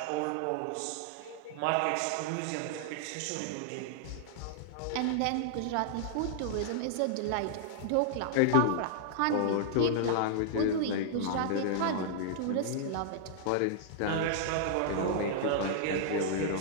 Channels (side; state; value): both; different; correlation -0.01